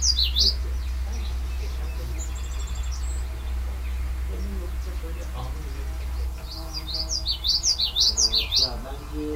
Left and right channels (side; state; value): both; identical; correlation 1.00